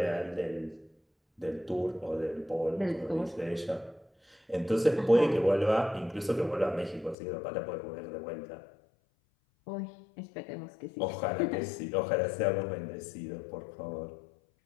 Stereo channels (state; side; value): drops out; right; at 7.2 s